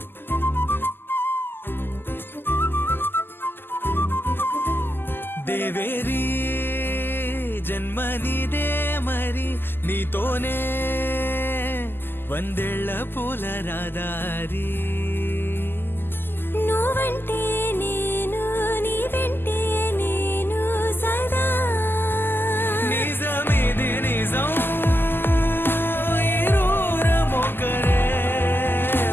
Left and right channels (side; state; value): right; late; 0.099 ms